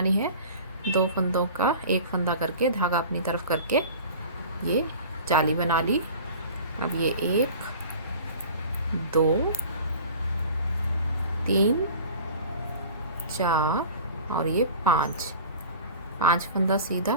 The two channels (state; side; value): inverted; both; correlation -0.41